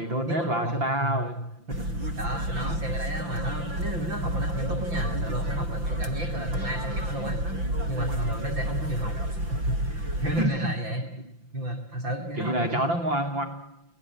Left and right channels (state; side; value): late; left; 5.9 ms